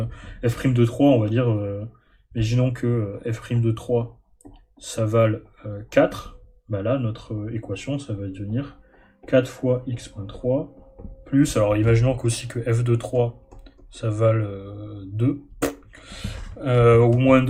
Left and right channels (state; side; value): identical; both; correlation 1.00